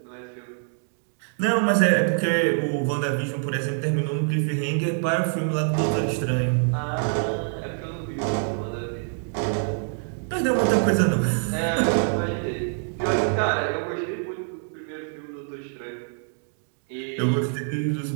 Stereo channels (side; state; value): left; silent; 61 dB below the other